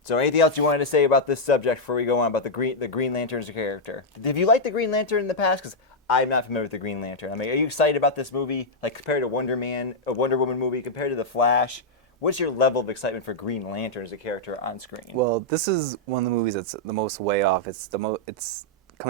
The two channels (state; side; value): normal; both; correlation -0.04